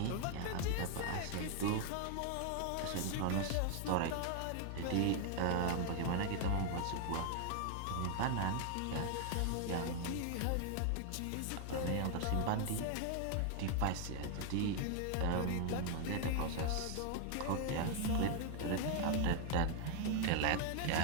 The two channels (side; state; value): both; different; correlation 0.00